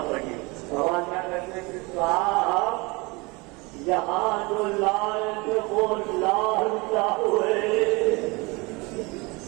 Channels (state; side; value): quieter; left; 25.9 dB